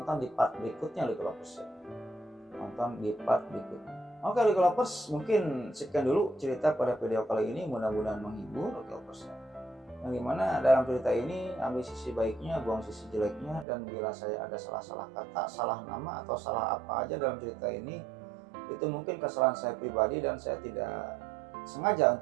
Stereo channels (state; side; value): drops out; left; at 13.7 s